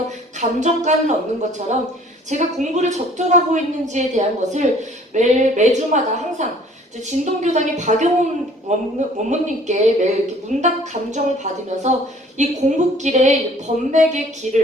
감정가를 얻는 것처럼 제가 공부를 적절하고 있는지에 대한 것을 매주마다 항상 진동교당의 박영훈 원무님께 매일 이렇게 문답 감정을 받으면서 이 공부길에 번맥의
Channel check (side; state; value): both; normal; correlation 0.54